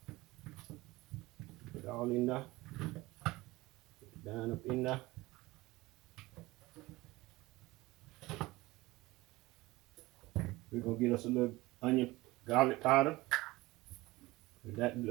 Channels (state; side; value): quieter; left; 20.1 dB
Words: Put it all in there. Put it down up in there. We're gonna get us a little onion garlic powder. Put that, a